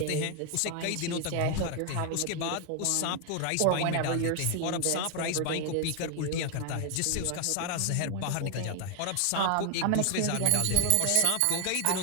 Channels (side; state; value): both; different; correlation 0.00